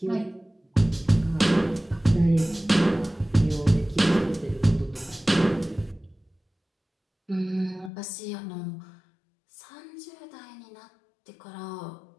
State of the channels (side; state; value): right; drops out; at 7.9 s